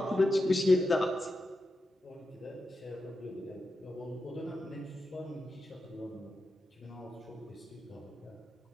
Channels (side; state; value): both; normal; correlation 0.89